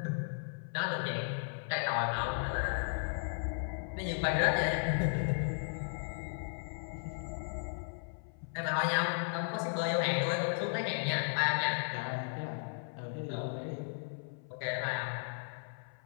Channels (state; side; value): silent; right; 54 dB below the other